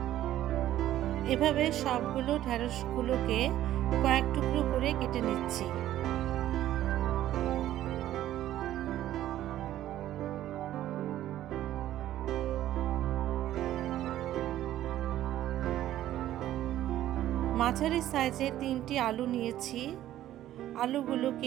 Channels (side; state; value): left; quieter; 13.1 dB